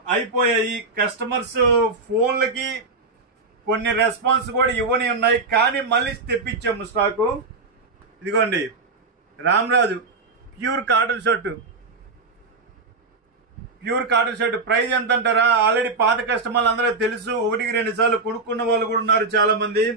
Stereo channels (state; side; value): quieter; left; 3.8 dB